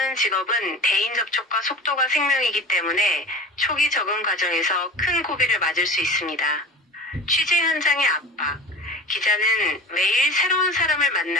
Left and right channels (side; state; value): both; normal; correlation 0.36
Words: 직업은 대인 접촉과 속도가 생명이기 때문에 초기 적응 과정에서 큰 고비를 맞을 수 있습니다. 취재 현장의 압박. 기자는 매일 새로운 사람을